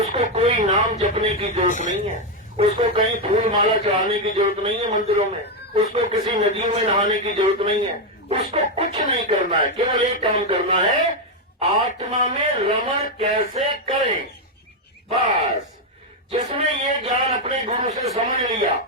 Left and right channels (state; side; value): normal; both; correlation 0.04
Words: कोई नाम जपने की जरूरत नहीं है, उसको कहीं फूल माला चढ़ाने की जरूरत नहीं है मंदिरों में, उसको किसी नदियों में नहाने की जरूरत नहीं है, उसको कुछ नहीं करना है। केवल एक काम करना है, आत्मा में रमण कैसे करें। बस जिसने ये ज्ञान अपने गुरु से समझ लिया